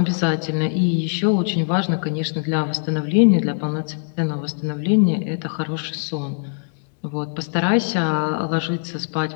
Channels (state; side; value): silent; right; digital silence